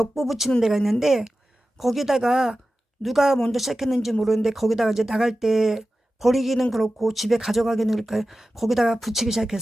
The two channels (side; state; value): both; normal; correlation 0.94